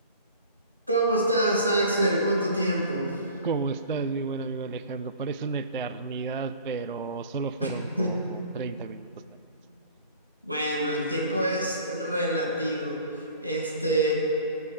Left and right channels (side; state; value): both; inverted; correlation -0.44